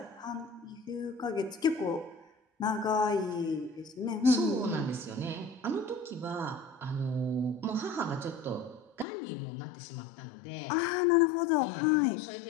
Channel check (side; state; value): right; drops out; at 9.1 s